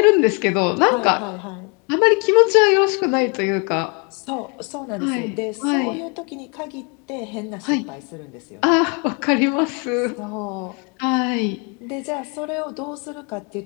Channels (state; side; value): quieter; right; 33.8 dB